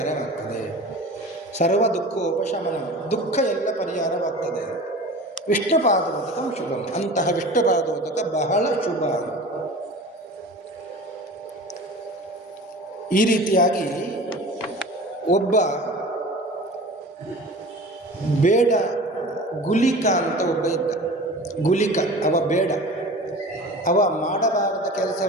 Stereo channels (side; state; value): both; normal; correlation 0.38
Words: ಸರ್ವ ದುಃಖೋಪಶಮನ, ದುಃಖ ಎಲ್ಲ ಪರಿಹಾರವಾಗ್ತದೆ. ವಿಷ್ಣು ಪಾದೋದಕಂ ಶುಭಂ. ಅಂತಹ ವಿಷ್ಣು ಪಾದೋದಕ ಬಹಳ ಶುಭ. ಈ ರೀತಿಯಾಗಿ ಒಬ್ಬ ಬೇಡ ಗುಲಿಕ ಅಂತ ಒಬ್ಬ ಇದ್ದ. ಗುಲಿಕ ಅವ ಬೇಡ, ಅವ ಮಾಡಬಾರದ